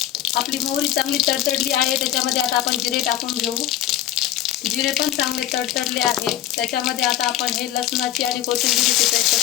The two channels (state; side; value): quieter; right; 12.4 dB